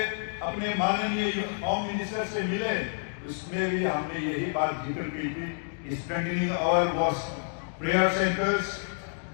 अपने माननीय होम मिनिस्टर से मिले, उसमें भी हमने यही बात जिक्र की थी, strengthening our prayer centers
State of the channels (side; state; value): right; silent; digital silence